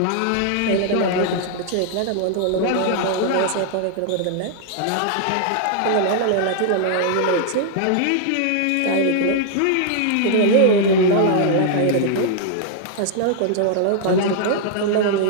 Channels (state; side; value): different; both; correlation 0.00